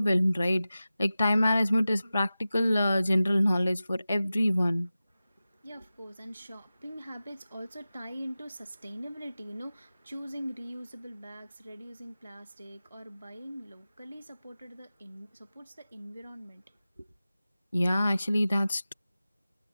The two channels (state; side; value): inverted; both; correlation -0.95